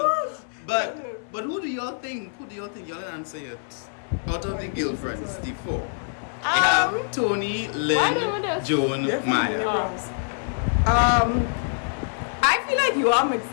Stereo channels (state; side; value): silent; right; 62 dB below the other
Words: But who do y'all think? Who do y'all think? Y'all answer it. Out of the girlfriends, the four. They have Tony, Lynn, Joan, Maya. I feel like you are